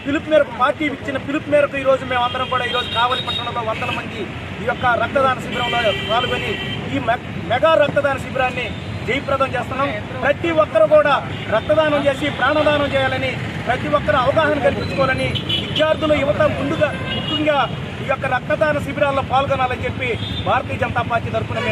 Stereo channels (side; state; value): both; identical; correlation 1.00